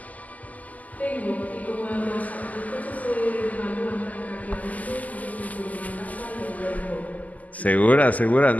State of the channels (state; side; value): late; right; 0.077 ms